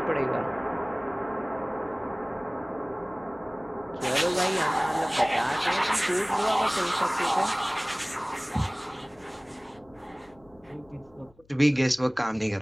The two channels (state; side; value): noise; left; hum, 30 dB below the sound